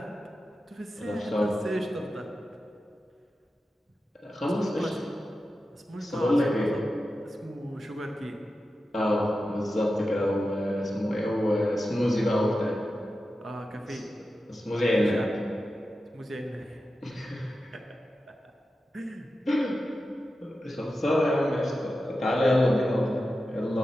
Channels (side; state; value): both; normal; correlation 0.92